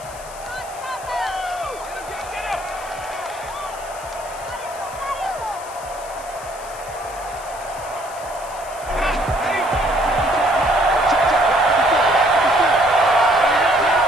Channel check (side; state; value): left; noise; hiss, 17 dB below the sound